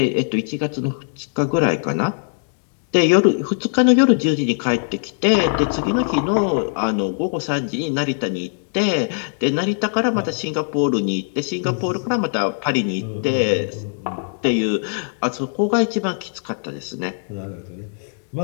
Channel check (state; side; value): silent; right; digital silence